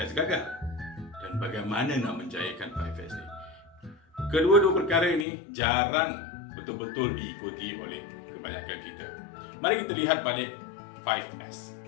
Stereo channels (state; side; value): drops out; right; at 5.2 s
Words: gagal? Dan bagaimana nak menjayakan 5S ni? Kedua-dua perkara ini jarang betul-betul diikuti oleh kebanyakan kita. Mari kita lihat balik 5S.